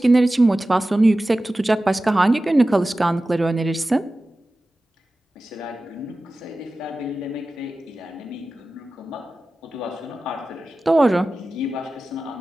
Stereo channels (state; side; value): normal; both; correlation 0.95